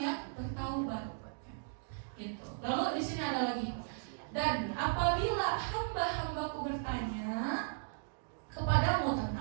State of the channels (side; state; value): left; silent; digital silence